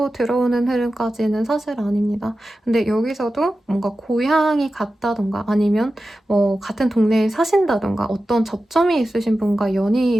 들어오는 흐름까지는 사실 아닙니다. 근데 여기서도 뭔가 고향이 같다던가 아니면 뭐 같은 동네에 사신다던가 어떤 접점이 있으신 분과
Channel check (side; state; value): both; normal; correlation 0.93